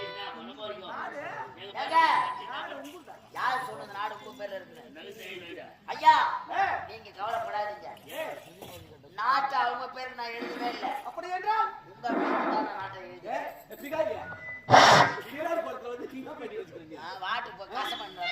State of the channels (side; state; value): both; identical; correlation 1.00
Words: யாரு சொன்னது நாடு உங்க பேர்ல இருக்கு? ஐயா நீங்க கவலைப்படாதீங்க. நாட்டை அவங்க பேருக்கு நான் எழுதவே இல்லை. அப்படி என்றால் உங்க பேருக்கு தான் நான் நாட்டை எழுதுறேன். வாட்டு இப்போ காசு